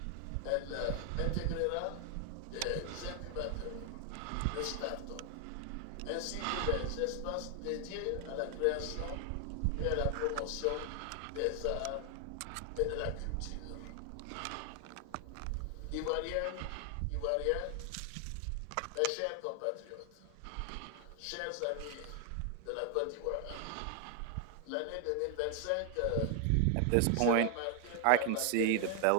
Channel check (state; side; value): different; both; correlation 0.00